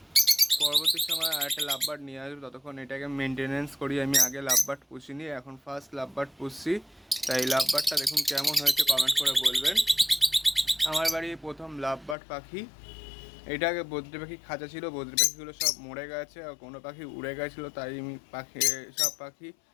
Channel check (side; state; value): right; drops out; at 12.2 s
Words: পরবর্তী সময় আরেকটা লাভ বার্ড নিয়ে আসবো, ততক্ষণ এটাকে মেনটেনেন্স করি। আমি আগে লাভ বার্ড পুষিনি, এখন ফার্স্ট লাভ বার্ড পুষছি, তাই লাভ বার্ডটা দেখুন কেমন হয়েছে কমেন্ট করে বলবেন। আমার বাড়ি প্রথম লাভ বার্ড পাখি। এটা আগে বদ্রি পাখি খাঁচা ছিল, বদ্রি পাখিগুলো সব মরে গেছে আর কোনো পাখি উড়ে গেছিলো, তাই আমি সব পাখি